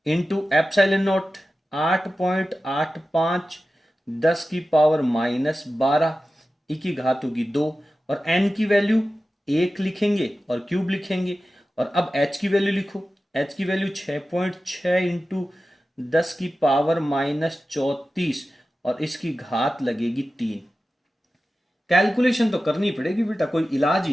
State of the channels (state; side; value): normal; both; correlation 0.94